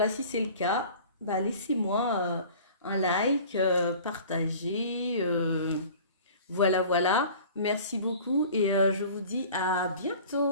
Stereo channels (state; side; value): inverted; both; correlation -0.44